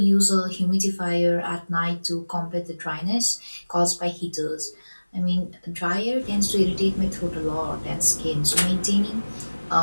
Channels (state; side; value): inverted; both; correlation -1.00